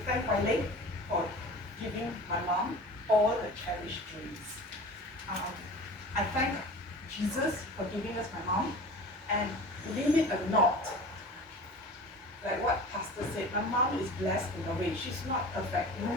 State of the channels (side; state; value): both; normal; correlation 0.38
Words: thank my late for giving my mom all the cherished dreams. I thank Jesus for giving us my mom, and believe it or not, like what Pastor said, my mom is blessed in a way. She's not perfect.